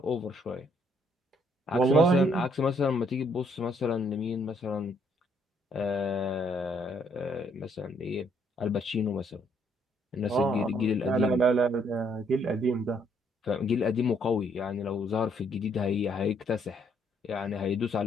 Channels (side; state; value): both; normal; correlation 0.69